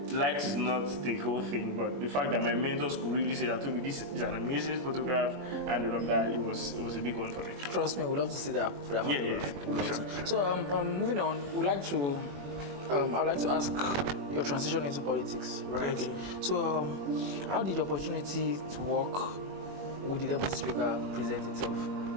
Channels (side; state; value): left; late; 21 ms